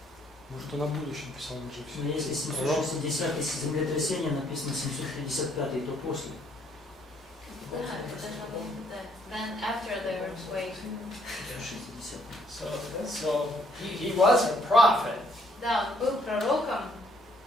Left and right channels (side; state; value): both; normal; correlation 0.67